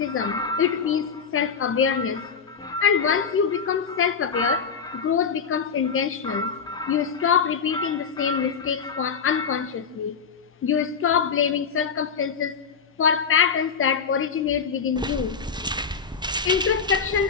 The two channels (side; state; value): right; quieter; 6.1 dB